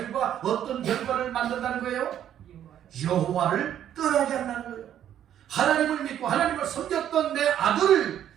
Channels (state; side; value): quieter; left; 10.5 dB